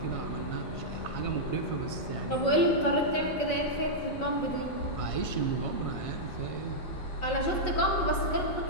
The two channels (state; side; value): late; right; 5.4 ms